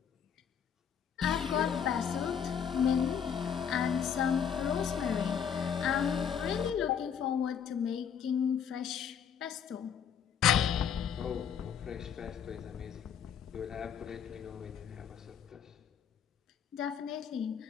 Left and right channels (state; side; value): quieter; right; 7.9 dB